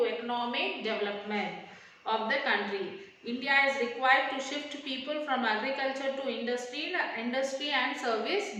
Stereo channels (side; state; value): both; identical; correlation 1.00